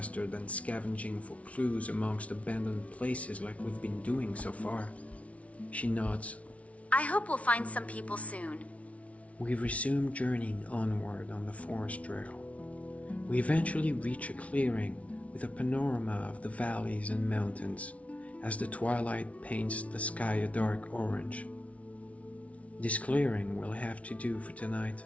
than scavenging for clues amongst abandoned places like we've been doing so far. She nods. I hope we'll find some people soon. We resume journeying onward on the forest trail. We eventually reach a clearing with a panorama of the valleys and mountains as the twilight paints the sky a dark orange. This clearing will have to do for tonight.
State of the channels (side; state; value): right; late; 0.065 ms